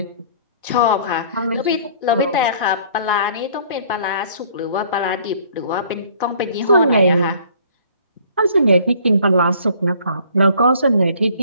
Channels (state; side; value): inverted; both; correlation -0.55